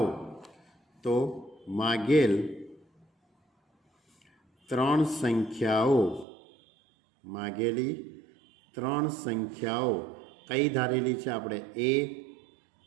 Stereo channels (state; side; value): drops out; left; at 6.2 s